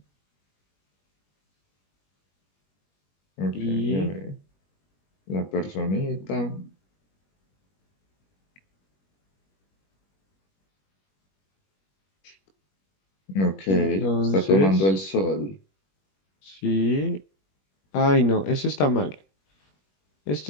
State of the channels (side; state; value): right; late; 21 ms